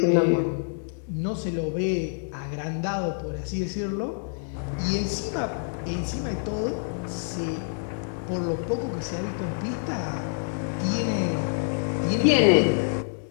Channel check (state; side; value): silent; right; 60 dB below the other